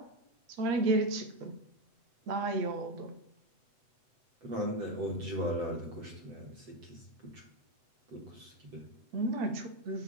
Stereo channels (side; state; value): left; late; 8.0 ms